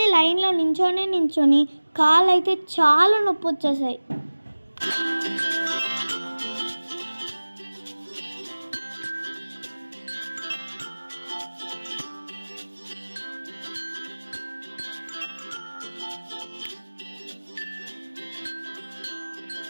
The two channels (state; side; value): inverted; both; correlation -1.00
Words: లైన్లో నించొని కాళ్ళు అయితే చాలా నొప్పి వచ్చేసాయి.